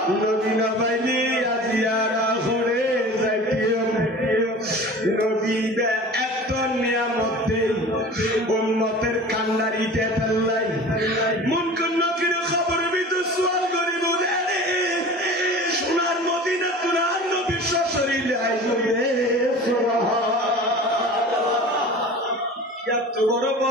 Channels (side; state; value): both; normal; correlation 0.39